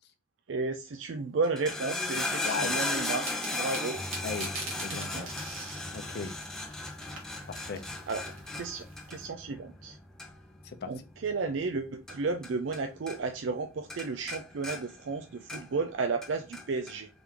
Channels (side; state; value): both; normal; correlation 0.08